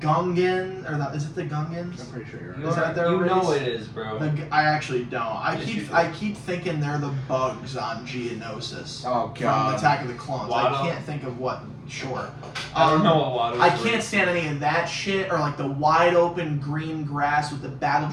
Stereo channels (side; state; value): both; identical; correlation 1.00